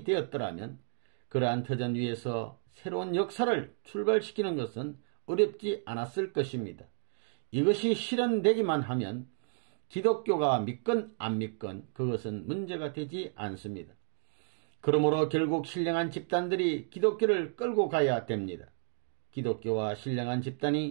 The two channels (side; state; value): left; silent; digital silence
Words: 되었더라면 그러한 터전 위에서 새로운 역사를 출발시키는 것은 어렵지 않았을 것입니다. 이것이 실현되기만 하면 기독교가 믿건 안 믿건 그것은 문제가 되지 않습니다. 그러므로 결국 신령한 집단들이 기독교를 끌고 가야 됩니다. 기독교와 신령한